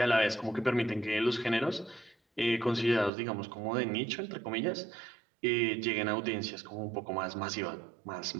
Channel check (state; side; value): drops out; left; at 3.1 s